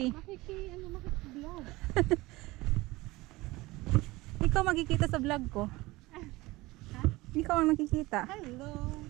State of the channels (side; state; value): left; quieter; 20.6 dB